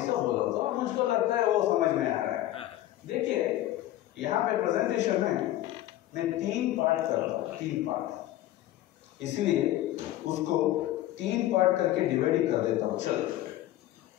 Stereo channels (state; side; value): quieter; right; 14.6 dB